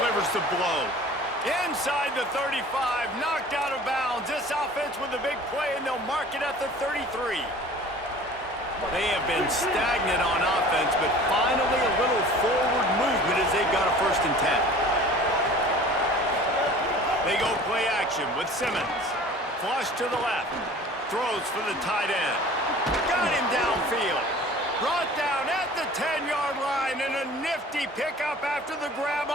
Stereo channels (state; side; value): normal; both; correlation 0.45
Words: the blow. Inside the 35, knocked out of bounds. This offense with a big play, and they'll mark it at the 33. They have been stagnant on offense, but finally a little forward movement as they've got a 1st and 10. They go play action with Simmons. Flush to the left. Throws for the tight end. Got him downfield. Brought down at the 10-yard line, and a nifty pickup after the grab